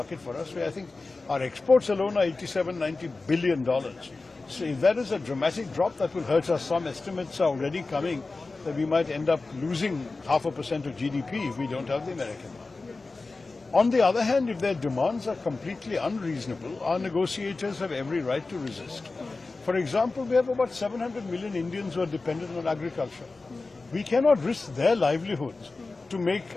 for us. I think our exports alone are $87-90 billion. So if that is a dramatic drop, that will hurt us. Some estimates are already coming that we might end up losing 0.5% of GDP if we don't have the American market. On the other hand, if their demands are completely unreasonable, our negotiators have every right to resist. For example, we have about 700 million Indians who are dependent on agriculture. We cannot risk their livelihoods to make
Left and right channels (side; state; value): right; quieter; 3.6 dB